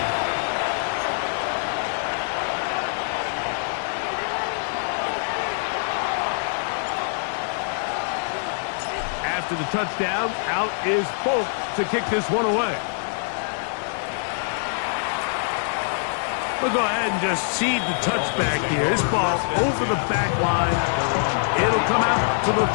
After the touchdown, out is Folk to kick this one away. We'll go ahead and just seed the touchback here. This ball over the back line. It'll come out to the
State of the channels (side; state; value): right; silent; digital silence